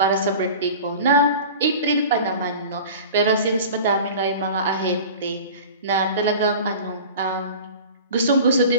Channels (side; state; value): both; inverted; correlation -0.38